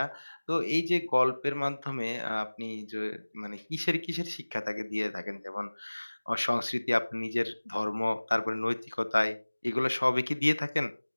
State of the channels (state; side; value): inverted; both; correlation -1.00